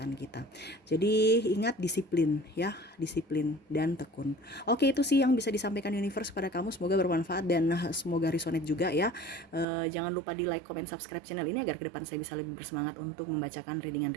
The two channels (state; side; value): drops out; left; at 9.7 s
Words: kita. Jadi ingat, disiplin ya, disiplin dan tekun. Oke, itu sih yang bisa disampaikan universe pada kamu, semoga bermanfaat dan semoga resonate juga ya. Jangan lupa di like, comment, subscribe channel ini agar ke depan saya bisa lebih bersemangat untuk membacakan